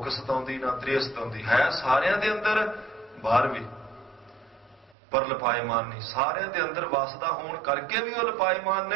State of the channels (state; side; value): drops out; left; at 5.0 s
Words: ਸਤਾਉਂਦੀ, ਨਾ ਤ੍ਰੇਹ ਸਤਾਉਂਦੀ। ਹੈ ਸਾਰਿਆਂ ਦੇ ਅੰਦਰ, ਬਾਹਰ ਵੀ, ਪਰ ਲਪਾਏਮਾਨ ਨਹੀਂ। ਸਾਰਿਆਂ ਦੇ ਅੰਦਰ ਵਸਦਾ ਹੋਣ ਕਰਕੇ ਵੀ ਉਹ ਲਪਾਏਮਾਨ